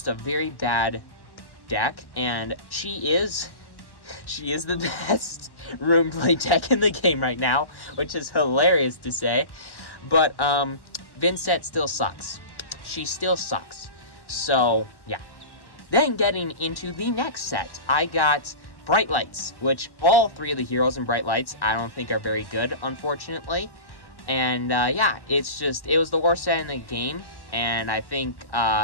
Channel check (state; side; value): late; right; 1.1 ms